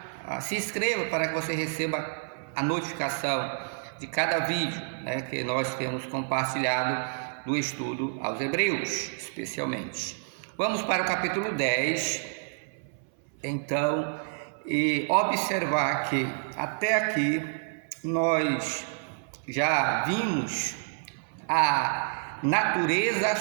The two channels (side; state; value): left; silent; 59 dB below the other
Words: se inscreva para que você receba a notificação de cada vídeo, que nós temos compartilhado do estudo aos Hebreus, especialmente. Vamos para o capítulo 10, então, e observar que até aqui nós já vimos a natureza